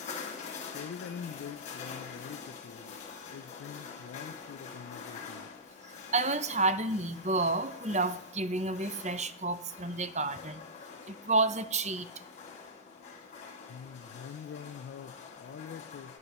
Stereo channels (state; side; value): normal; both; correlation -0.15